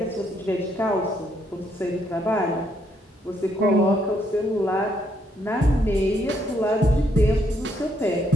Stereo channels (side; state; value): both; normal; correlation 0.73